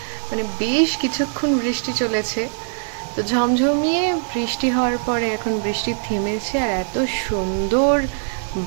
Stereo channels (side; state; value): left; silent; 56 dB below the other